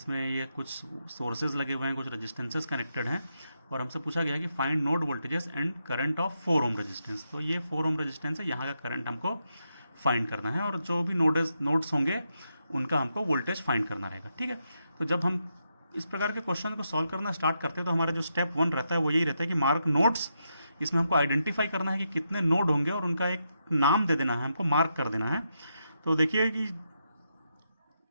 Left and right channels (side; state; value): both; inverted; correlation -0.83